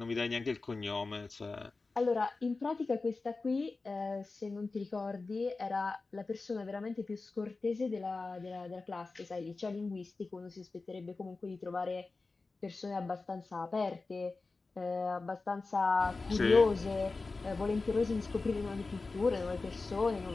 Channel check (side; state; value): right; quieter; 3.8 dB